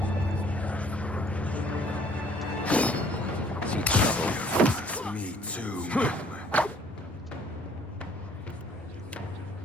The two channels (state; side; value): normal; both; correlation 0.58